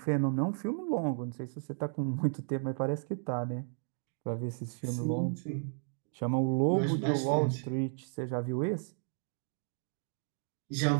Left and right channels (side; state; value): left; silent; 55 dB below the other